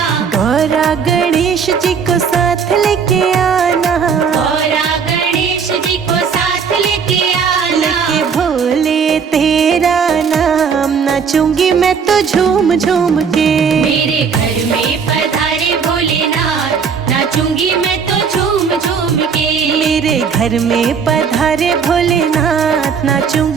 गौरा गणेश जी को साथ लेके आना। गौरा गणेश जी को साथ लेके आना। लेके भोले तेरा नाम नाचूंगी मैं तो झूम झूम के। मेरे घर में पधारे भोलेनाथ नाचूंगी मैं तो झूम झूम के। मेरे घर में पधारे भोलेनाथ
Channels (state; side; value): quieter; left; 6.3 dB